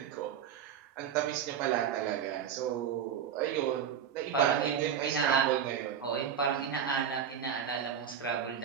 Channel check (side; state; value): left; quieter; 8.3 dB